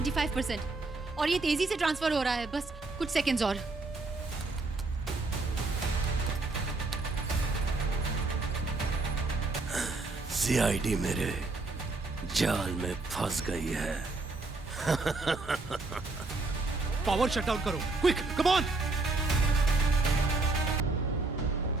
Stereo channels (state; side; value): quieter; left; 3.4 dB